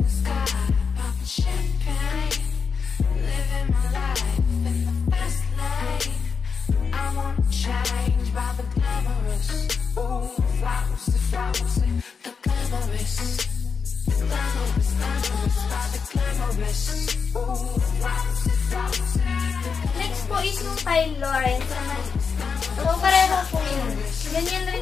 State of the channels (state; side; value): quieter; right; 5.7 dB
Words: next po is yung kay Lawrence. So, pareho po yun. Ganyan